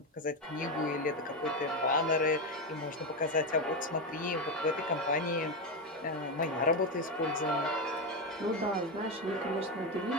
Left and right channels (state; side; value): normal; both; correlation 0.10